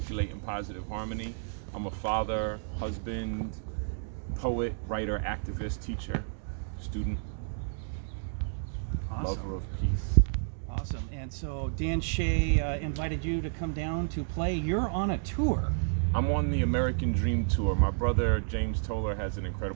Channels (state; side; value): silent; left; digital silence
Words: in positive harmony. I'm a father, husband, poet, writer, activist, teacher, student, Awesome. lover of peace. Awesome. And so Dan Shea invited you to come down to play. You're on a tour. I'm on the American Dream Tour. My brother James Toller has an